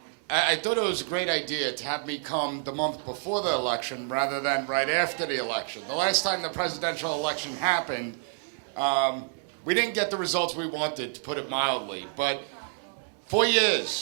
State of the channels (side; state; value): left; silent; digital silence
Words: I thought it was a great idea to have me come the month before the election rather than right after the election. The last time the presidential election happened, we didn't get the results we wanted, to put it mildly, but 4